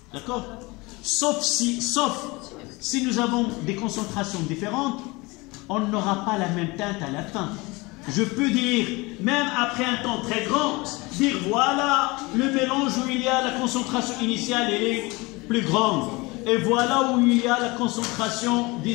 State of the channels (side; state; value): right; quieter; 24.2 dB